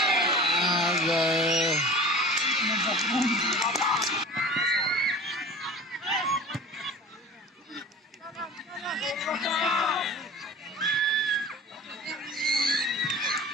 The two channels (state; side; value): normal; both; correlation 0.39